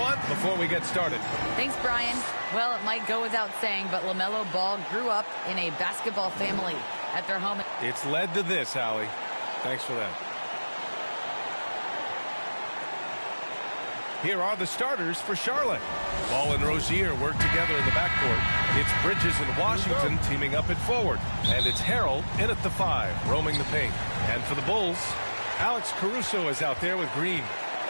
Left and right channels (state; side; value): inverted; both; correlation -1.00